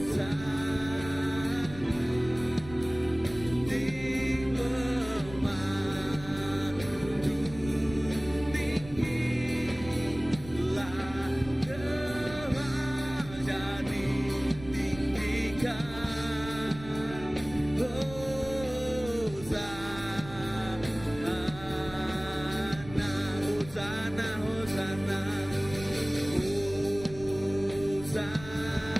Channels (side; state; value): right; noise; rumble, 15 dB below the sound